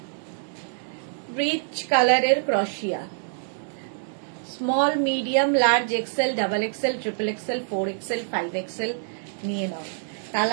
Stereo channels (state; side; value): silent; left; digital silence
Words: রিচ কালারের ক্রশিয়া। Small, medium, large XL, double XL, triple XL, 4XL, 5XL নিয়ে নাও।